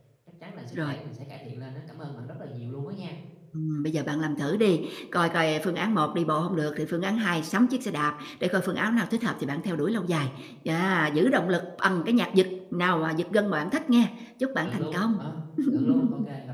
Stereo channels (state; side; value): identical; both; correlation 1.00